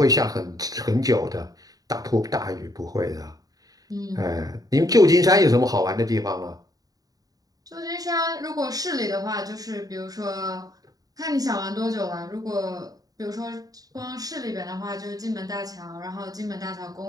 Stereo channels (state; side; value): late; left; 0.18 ms